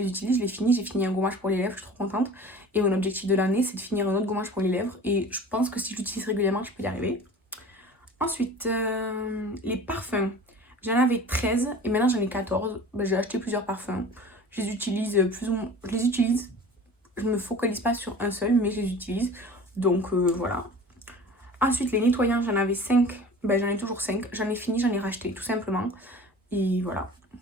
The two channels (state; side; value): normal; both; correlation 0.41